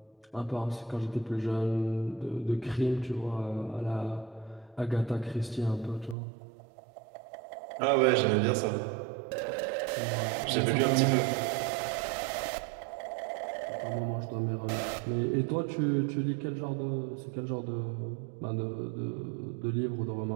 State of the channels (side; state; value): left; drops out; at 6.2 s